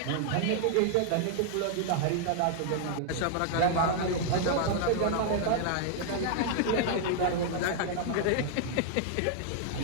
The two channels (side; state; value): both; different; correlation 0.00